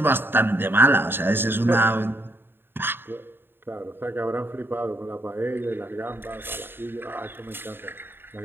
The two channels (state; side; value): late; left; 0.10 ms